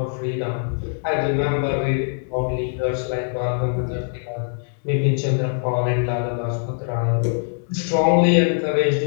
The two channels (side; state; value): right; silent; digital silence